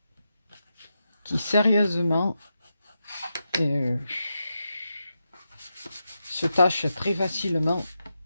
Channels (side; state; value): both; inverted; correlation -0.87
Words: qui, sérieusement, se tachent très facilement